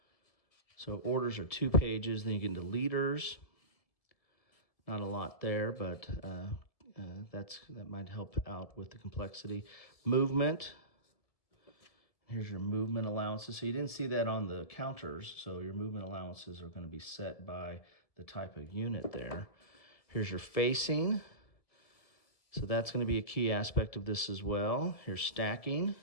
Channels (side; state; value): right; late; 1.7 ms